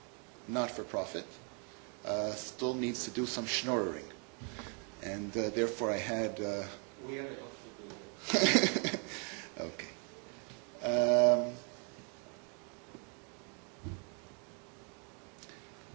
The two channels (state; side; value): quieter; left; 38.2 dB